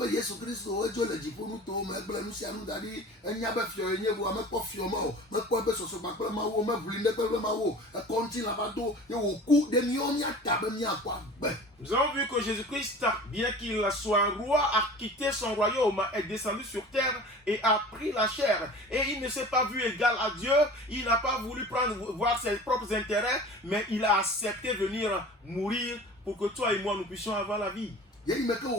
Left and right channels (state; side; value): normal; both; correlation 0.41